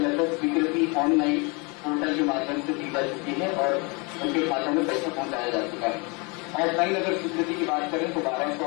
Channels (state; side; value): quieter; right; 30.3 dB